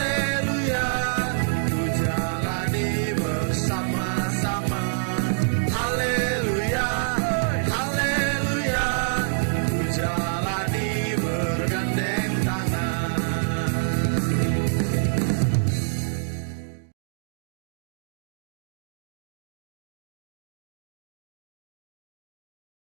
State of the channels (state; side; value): silent; left; digital silence